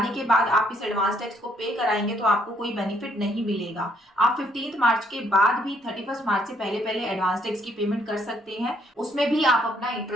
के बाद आप इस एडवांस टैक्स को पे कराएंगे तो आपको कोई बेनिफिट नहीं मिलेगा। आप 15 मार्च के बाद भी 31 मार्च से पहले पहले एडवांस टैक्स की पेमेंट कर सकते हैं, उसमें भी आप अपना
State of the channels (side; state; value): both; normal; correlation 0.68